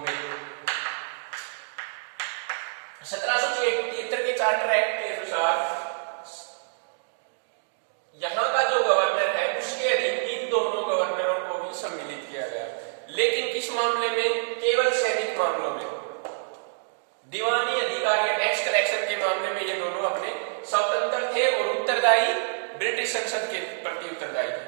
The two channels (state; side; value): silent; left; digital silence